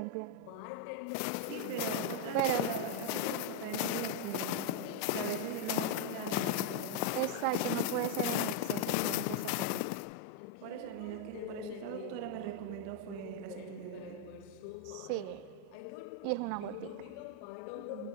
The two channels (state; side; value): different; both; correlation 0.00